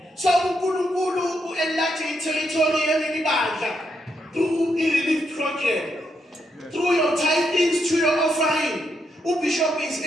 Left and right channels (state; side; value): normal; both; correlation 0.80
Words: So uNkulunkulu u-enlarge territory yeleli bandla through i-relief youth program, through your tithings, through your offering, Bishop is